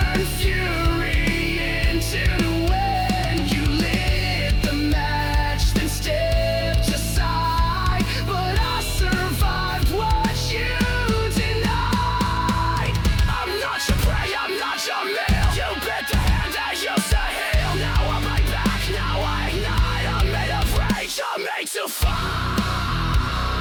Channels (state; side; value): identical; both; correlation 1.00